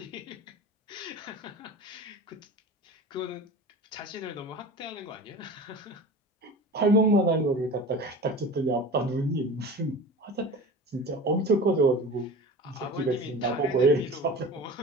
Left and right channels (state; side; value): normal; both; correlation 0.35